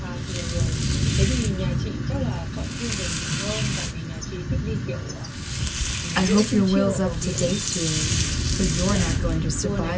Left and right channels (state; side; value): identical; both; correlation 1.00